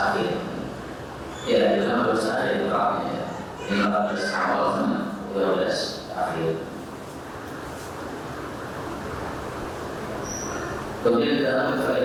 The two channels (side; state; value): both; identical; correlation 1.00